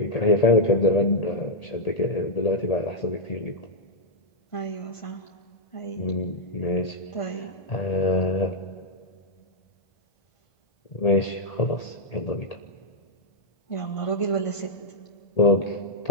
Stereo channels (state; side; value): late; right; 1.8 ms